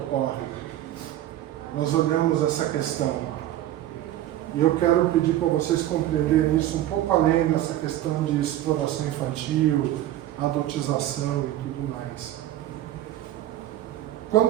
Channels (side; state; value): left; quieter; 13.4 dB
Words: nós olhamos essa questão, e eu quero pedir para vocês compreenderem isso um pouco além dessa questão de exploração infantil, adotização e tudo mais.